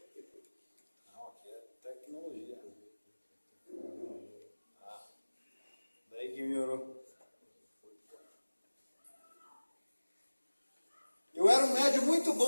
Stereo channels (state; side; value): inverted; both; correlation -1.00